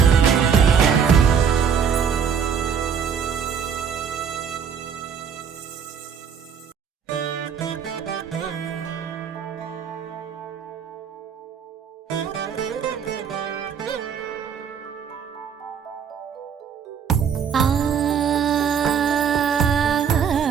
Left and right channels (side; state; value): left; quieter; 7.2 dB